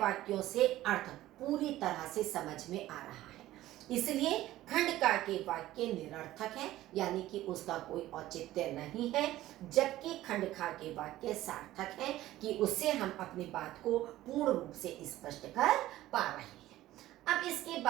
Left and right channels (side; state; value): left; quieter; 15.2 dB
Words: से अर्थ पूरी तरह से समझ में आ रहा है। इसलिए खंड का के वाक्य निरर्थक है, यानी कि उसका कोई औचित्य नहीं है, जबकि खंड खा के वाक्य सार्थक है कि उससे हम अपनी बात को पूर्ण रूप से स्पष्ट कर पा रहे हैं। अब इसके